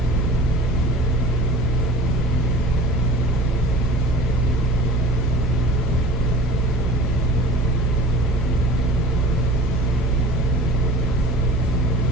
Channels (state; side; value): normal; both; correlation 0.43